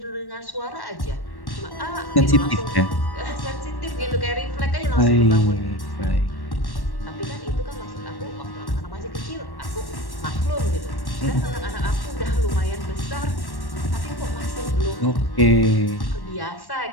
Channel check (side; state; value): right; late; 1.1 ms